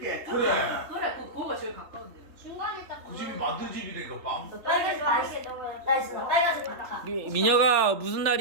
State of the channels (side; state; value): left; late; 3.4 ms